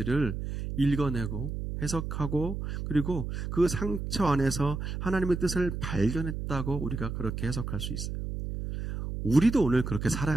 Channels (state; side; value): noise; right; hum, 5 dB below the sound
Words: 읽어내고 해석하고 그리고 그 상처 안에서 하나님의 뜻을 발견했다고 우리가 그렇게 해석할 수 있어요. 우리도 오늘 그렇게 살아야